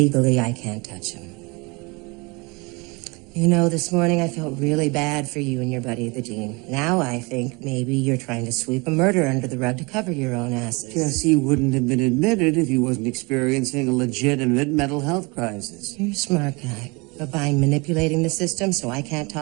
I can't touch him. You know, this morning I felt really bad for you and your buddy, the dean. Now I think maybe you're trying to sweep a murder under the rug to cover your own asses. Jesse wouldn't have been admitted if he wasn't experiencing a legitimate mental health crisis. You're a smart guy. But by manipulating the system so I can't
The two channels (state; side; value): quieter; left; 27.3 dB